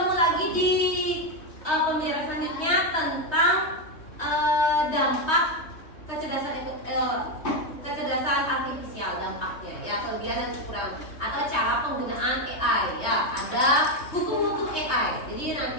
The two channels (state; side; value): late; right; 3.2 ms